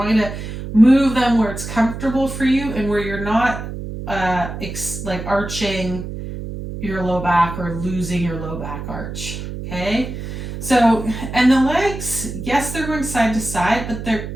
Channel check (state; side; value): noise; right; hum, 8 dB below the sound